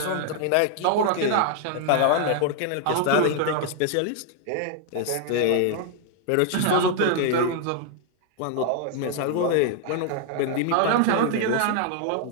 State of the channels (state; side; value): different; both; correlation 0.00